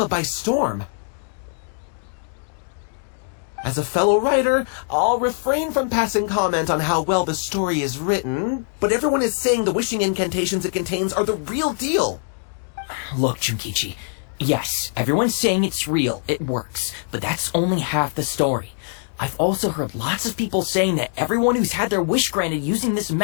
by storm. As a fellow writer, I'll refrain from passing comment on how well the story is written, but everyone is saying the wishing incantations it contains are the real deal. Look, Junkichi, yes, everyone's saying it's real, it works, but that's only half the story. I've also heard lots of people saying that everyone who's had their wish granted using this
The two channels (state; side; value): silent; right; 64 dB below the other